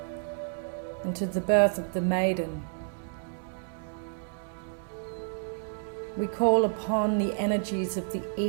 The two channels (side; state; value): left; silent; 58 dB below the other